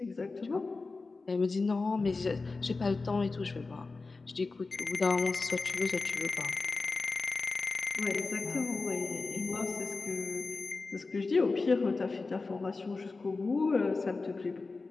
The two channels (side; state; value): right; quieter; 3.8 dB